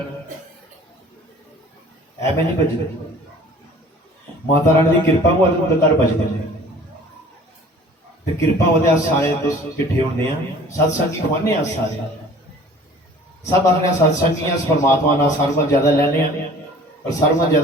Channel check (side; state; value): both; normal; correlation 0.49